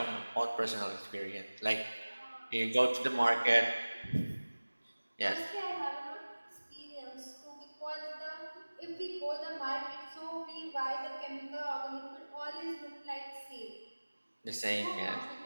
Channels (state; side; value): inverted; both; correlation -1.00